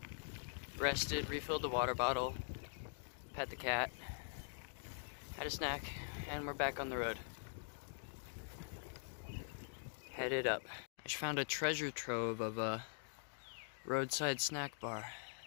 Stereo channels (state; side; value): silent; right; digital silence